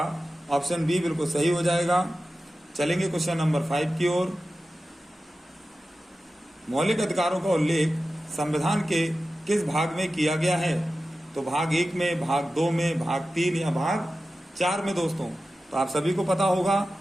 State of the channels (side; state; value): both; normal; correlation 0.94